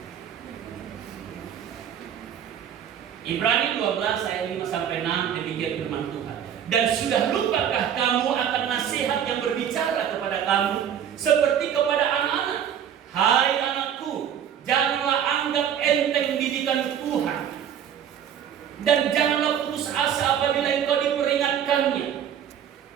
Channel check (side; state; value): left; quieter; 9.1 dB